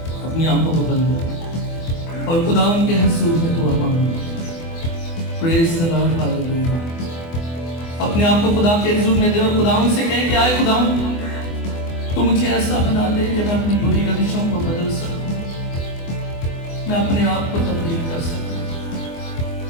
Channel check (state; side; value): late; right; 24 ms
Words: اپنی آنکھوں کو بند کریں اور خداوند کے حضور میں دعا مانگیں. پریز دی لارڈ، ہاللیلویا. اپنے آپ کو خدا کے حضور میں دے اور خداوند سے کہیں کہ آئے خداوند، تو مجھے ایسا بنا دے کہ میں اپنی بری روشوں کو بدل سکوں، میں اپنے آپ کو تبدیل کر سکوں،